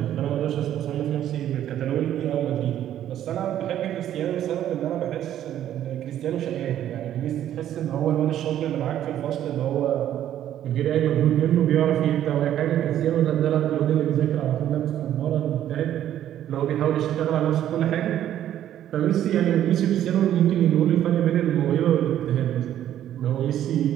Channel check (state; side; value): quieter; left; 11.4 dB